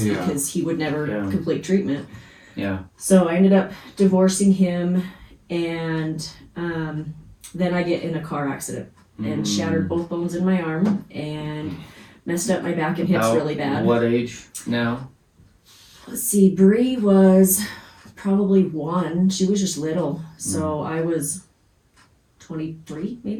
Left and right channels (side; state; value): both; identical; correlation 1.00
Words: Yeah. because he would never Yeah. complete treatment. Yeah. So I ended up divorcing him, and then I get in a car accident and shattered both bones in my arm and messed up my back and hips About really bad. What age now? Let's see, Bree was probably 1. She was just little, so I was 23